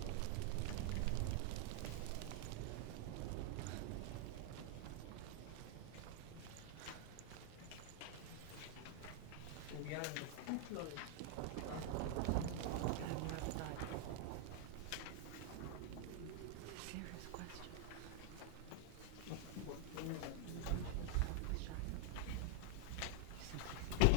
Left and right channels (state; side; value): different; both; correlation 0.00